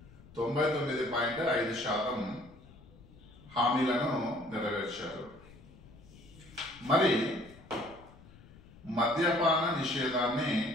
99.5% హామీలను నెరవేర్చారు. మరి మద్యపాన నిషేధాన్ని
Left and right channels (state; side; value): noise; left; rumble, 22 dB below the sound